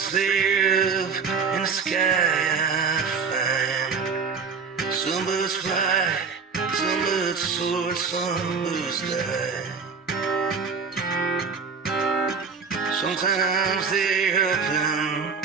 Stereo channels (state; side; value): quieter; left; 5.4 dB